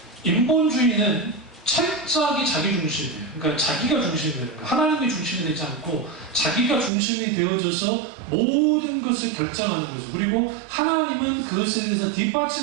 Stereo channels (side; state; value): left; drops out; at 6.9 s